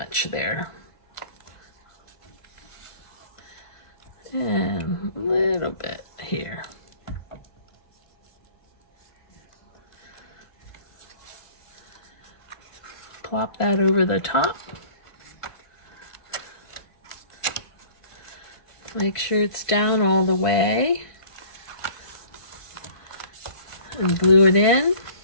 there. And a little bit here. Plop that over the top. Make sure it's down all the way. And glue it in.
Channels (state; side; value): late; right; 1.5 ms